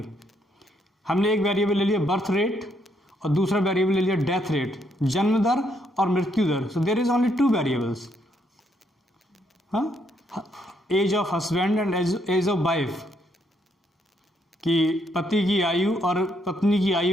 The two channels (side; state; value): both; normal; correlation 0.74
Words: हमने एक वेरिएबल ले लिया बर्थ रेट और दूसरा वेरिएबल ले लिया डेथ रेट, जन्म दर और मृत्यु दर, so there is only two variables. हाँ, age of husband and age of wife, कि पति की आयु और पत्नी की